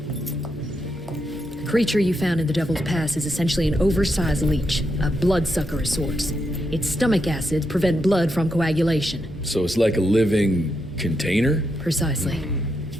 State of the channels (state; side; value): normal; both; correlation 0.83